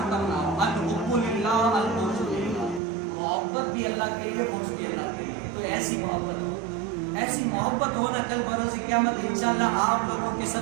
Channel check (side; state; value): left; drops out; at 2.8 s